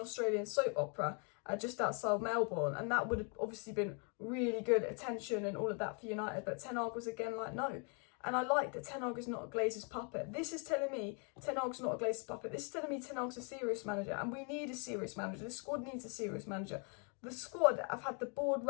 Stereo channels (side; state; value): right; quieter; 37.5 dB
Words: Australian soap opera, just outside Melbourne, and that would have obviously been really good attention and all of that for United, but Ten Hag was again like, no. And I like that Ten Hag is not a Glazer's puppet. This is telling me Ten Hag's not a Glazer's puppet. This is telling me Ten Hag's a serious manager, and we need a serious manager. The squad needs a serious manager. The squad have had the board